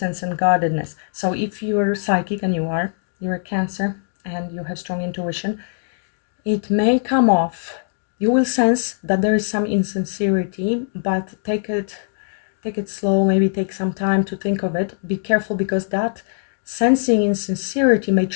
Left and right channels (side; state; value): right; silent; digital silence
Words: and guardedness. So if you're psychic, and you're a Cancer and you have strong intuition, it may come off. You will sense that there is some insincerity, but take it slow, maybe take some time to think of it. Be careful, because that sensing insincerity may